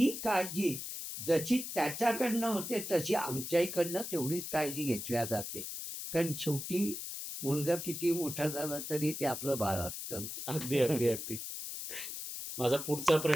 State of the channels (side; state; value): left; noise; hiss, 7 dB below the sound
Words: काळजी जशी त्याच्याकडनं होते, तशी आमच्याकडनं तेवढीच काळजी घेतल्या जाते. कारण शेवटी मुलगा किती मोठा झाला तरी ते आपलं बाळ असतं. अगदी, अगदी, अगदी. माझा पुढचा